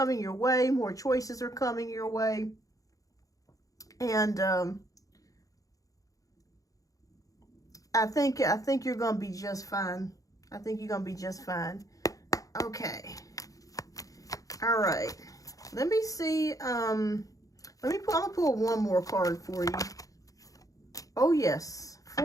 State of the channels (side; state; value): right; late; 0.17 ms